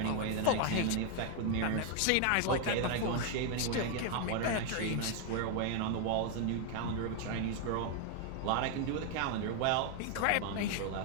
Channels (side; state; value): both; different; correlation 0.00